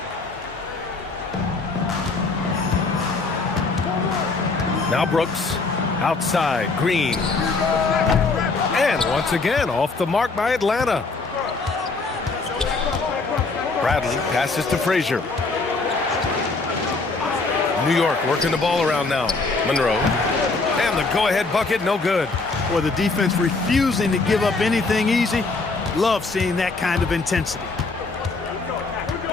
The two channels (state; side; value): quieter; right; 3.8 dB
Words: Now Brooks, outside, Green. And once again, off the mark by Atlanta. Bradley passes to Frazier. New York working the ball around now. Monroe. And the go-ahead bucket, no good. Well, the defense refusing to give up anything easy. Love seeing that kind of intensity.